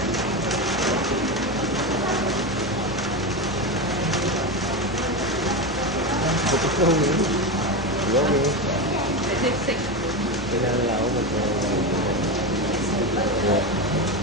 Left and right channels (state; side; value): normal; both; correlation 0.16